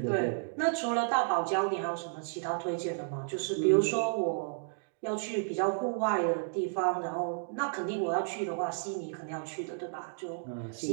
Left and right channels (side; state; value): left; silent; digital silence